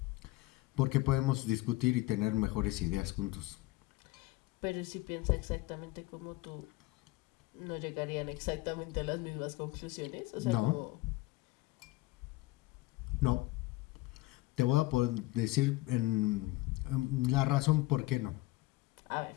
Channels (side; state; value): right; quieter; 19.9 dB